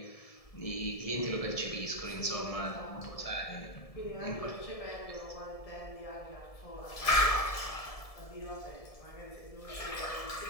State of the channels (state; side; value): late; right; 1.7 ms